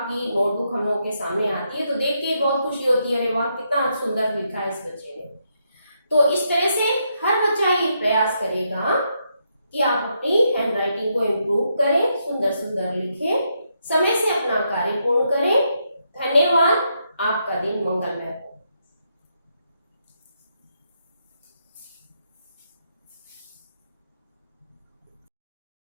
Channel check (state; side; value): inverted; both; correlation -0.79